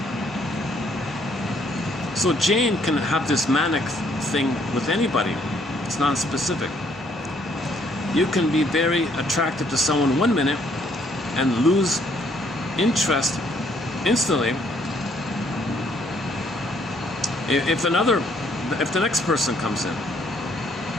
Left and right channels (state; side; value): normal; both; correlation 0.66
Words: So Jane can have this manic thing with anybody. It's non-specific. You can be very attracted to someone 1 minute and lose interest instantly if the next person comes in.